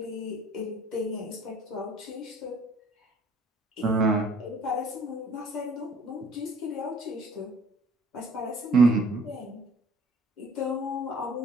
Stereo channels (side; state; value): both; normal; correlation 0.55